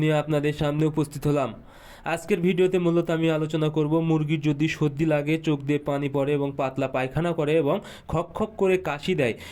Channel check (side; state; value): both; identical; correlation 1.00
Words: নিয়ে আপনাদের সামনে উপস্থিত হলাম। আজকের ভিডিওতে মূলত আমি আলোচনা করব মুরগির যদি সর্দি লাগে, চোখ দিয়ে পানি পড়ে এবং পাতলা পায়খানা করে এবং খক খক করে কাশি দেয়,